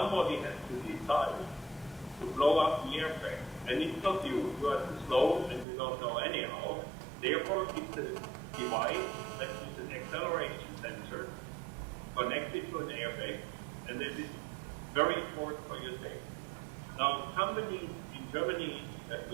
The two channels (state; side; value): drops out; left; at 5.7 s